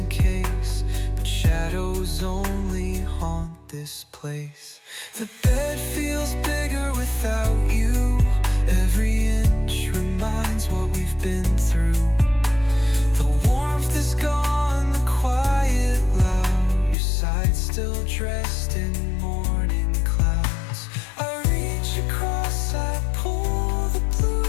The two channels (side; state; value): right; drops out; at 16.9 s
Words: case, but shadows only haunt this place. The bed feels bigger without you. Every inch reminds what we've been through. The warmth is gone, the quiet loud. Your side still dressed in morning clouds. I reach across, I pull the